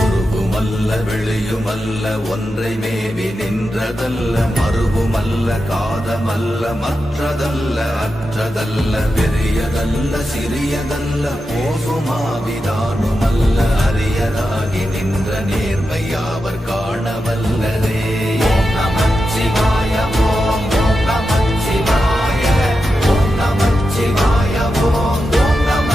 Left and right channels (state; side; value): normal; both; correlation 0.89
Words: வெளியுமல்ல ஒன்றை மேவி நின்றதல்ல, மறுவுமல்ல காதமல்ல மற்றதல்ல அற்றதல்ல, பெரியதல்ல சிறியதல்ல போசுமாவிதானுமல்ல, அரியராகி நின்ற நேர்மை யாவர் காண வல்லரே. ஓம் நமச்சிவாய ஓம் ஓம் நமச்சிவாய ஓம் நமச்சிவாய ஓம் ஓம்